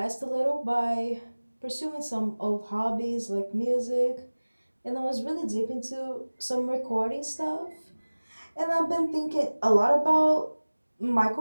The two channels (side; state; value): both; inverted; correlation -1.00